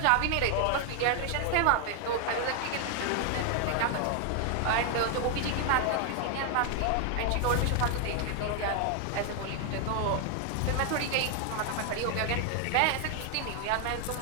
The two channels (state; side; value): different; both; correlation 0.00